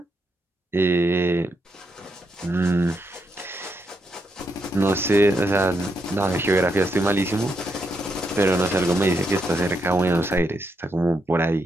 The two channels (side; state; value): both; normal; correlation 0.80